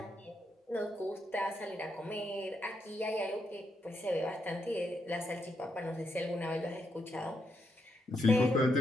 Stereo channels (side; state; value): both; normal; correlation 0.80